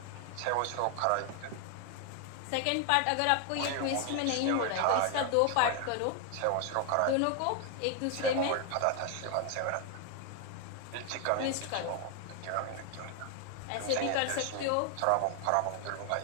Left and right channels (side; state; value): both; different; correlation 0.00